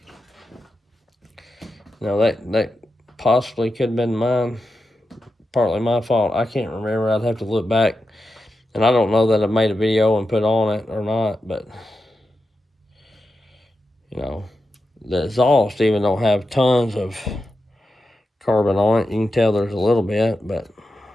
you know, that possibly could have been mine. Partly my fault. I can't remember. I'd have to look back. And I don't know that I made a video and put on it or not. But, you know, the exhaust even don't have tons of carbon on it. You can tell there's a little bit. But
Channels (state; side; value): normal; both; correlation 0.89